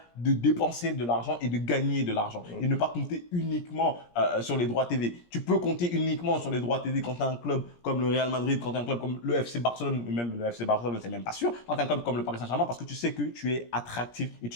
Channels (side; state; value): right; late; 17 ms